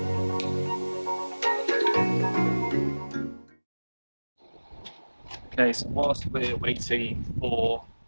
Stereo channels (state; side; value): inverted; both; correlation -1.00